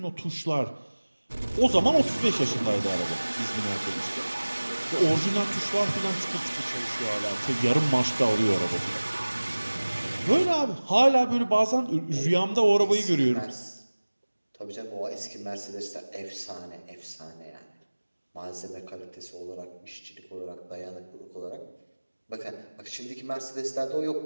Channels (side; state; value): both; inverted; correlation -1.00